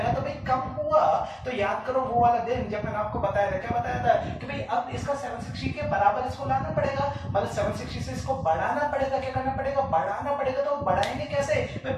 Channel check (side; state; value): both; identical; correlation 1.00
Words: तो भाई कम हुआ तो याद करो वो वाला दिन जब मैंने आपको बताया था, क्या बताया था कि भाई अब इसका 760 के बराबर इसको लाना पड़ेगा, मतलब 760 से इसको बढ़ाना पड़ेगा। क्या करना पड़ेगा? बढ़ाना पड़ेगा। तो बढ़ाएंगे कैसे भाई?